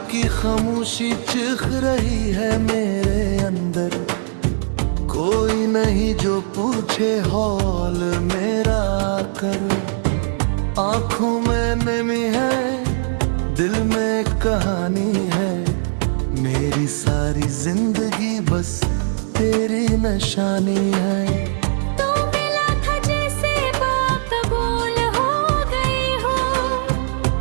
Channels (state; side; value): silent; left; 66 dB below the other